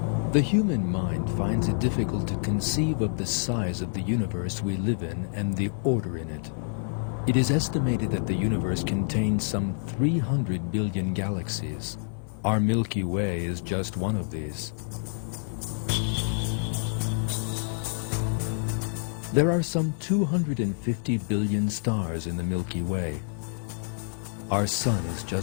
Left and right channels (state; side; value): silent; right; 56 dB below the other